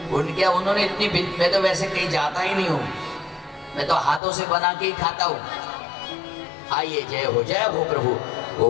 उन्होंने इतनी, मैं तो वैसे कहीं जाता ही नहीं हूँ, मैं तो हाथों से बना के ही खाता हूँ। आइए, जय हो प्रभु।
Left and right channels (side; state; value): right; drops out; at 4.2 s